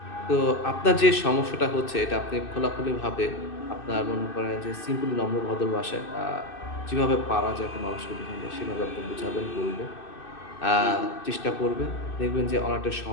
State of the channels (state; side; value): late; right; 2.6 ms